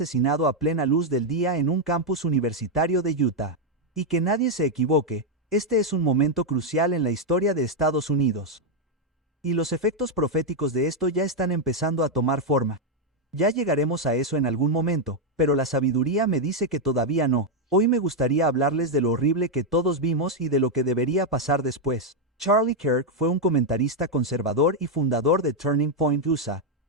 a plena luz del día en un campus universitario de Utah. Y que nadie se equivoque, este es un momento crucial en la historia de Estados Unidos. Y los efectos proféticos de esto ya están empezando a tomar forma. Ya llegaremos a eso en algún momento, pero la sabiduría me dice que todavía no. Hoy me gustaría hablarles de lo horrible que todos vimos y de lo que debería pasar después. Charlie Kirk fue un comentarista conservador y fundador de Turning Point USA,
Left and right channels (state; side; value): normal; both; correlation 0.01